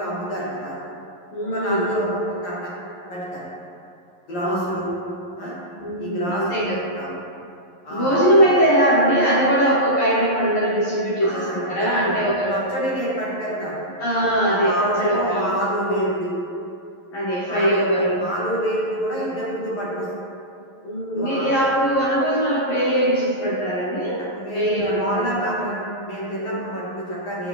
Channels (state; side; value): late; right; 11 ms